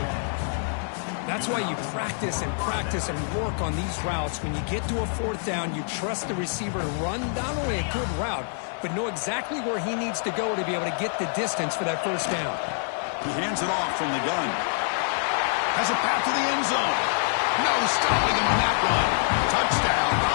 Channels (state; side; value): silent; right; 61 dB below the other